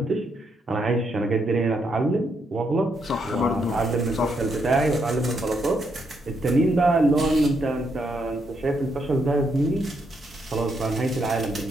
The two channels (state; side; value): normal; both; correlation 0.77